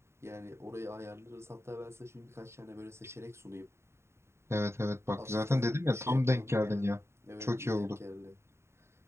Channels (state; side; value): late; left; 0.13 ms